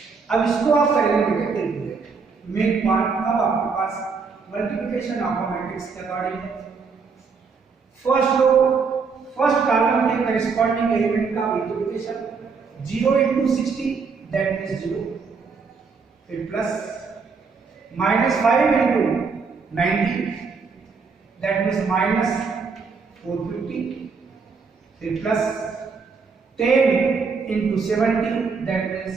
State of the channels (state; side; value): quieter; left; 5.1 dB